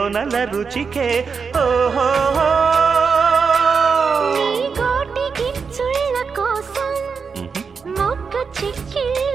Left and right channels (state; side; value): quieter; left; 5.5 dB